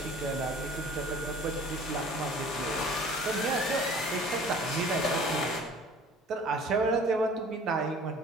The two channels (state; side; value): normal; both; correlation 0.47